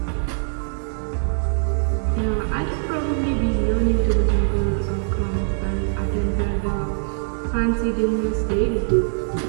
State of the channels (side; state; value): left; silent; digital silence